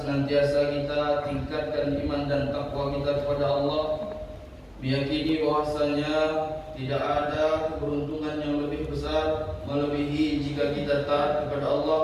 kita tingkatkan iman dan takwa kita kepada Allah, meyakini bahwasanya tidak ada keberuntungan yang lebih besar melebihi jika kita taat kepada Allah,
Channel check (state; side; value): identical; both; correlation 1.00